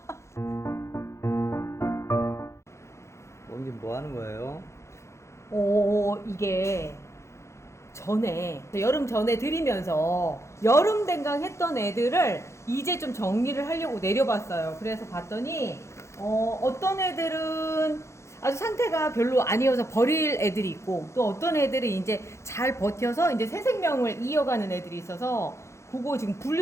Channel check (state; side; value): late; right; 0.14 ms